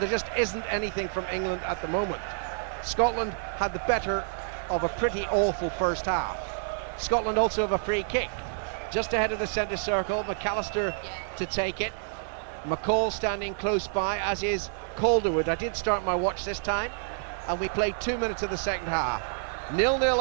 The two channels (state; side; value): silent; left; digital silence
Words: just isn't anything from England at the moment. Scotland had the better of a pretty awful first half. Scotland also have a free kick just ahead of the centre circle. McAllister to take it. McCall standing close by, as is Calderwood. I did start my watch this time, and we played 2 minutes of the second half. 0-0